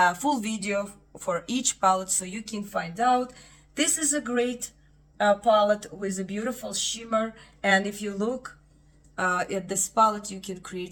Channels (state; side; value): identical; both; correlation 1.00